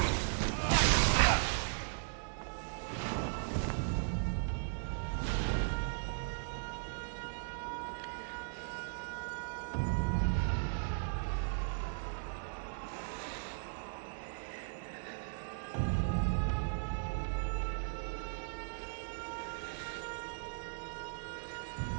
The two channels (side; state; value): left; silent; digital silence